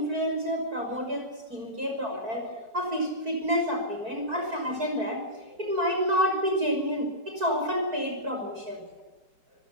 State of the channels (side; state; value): left; late; 4.5 ms